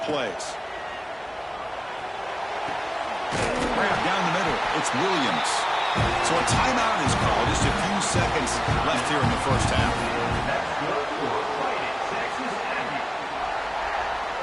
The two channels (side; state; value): both; identical; correlation 1.00